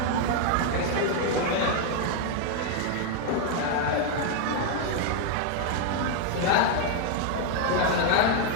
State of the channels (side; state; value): both; different; correlation 0.01